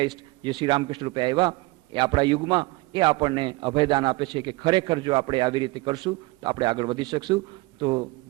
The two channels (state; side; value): quieter; left; 22.4 dB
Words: જે શ્રી રામકૃષ્ણ રૂપે આવ્યા એ આપણા યુગમાં એ આપણને અભયદાન આપે છે કે ખરેખર જો આપણે આવી રીતે કરશું તો આપણે આગળ વધી શકશું. તો